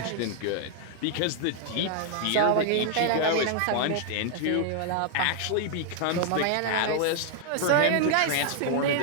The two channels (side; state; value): both; different; correlation 0.00